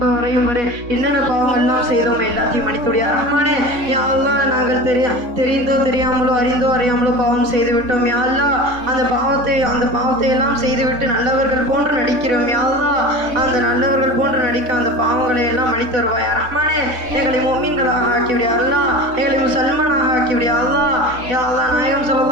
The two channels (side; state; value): left; late; 3.6 ms